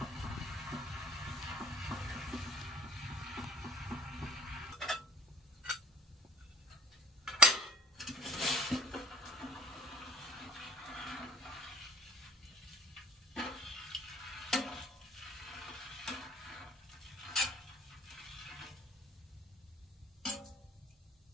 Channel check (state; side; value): normal; both; correlation 0.58